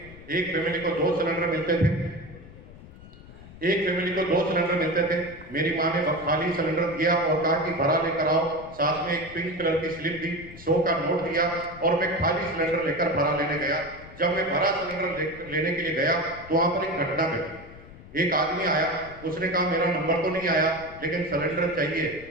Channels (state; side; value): noise; left; rumble, 18 dB below the sound